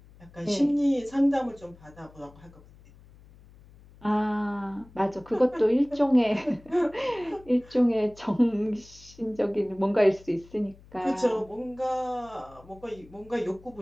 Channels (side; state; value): left; noise; hum, 24 dB below the sound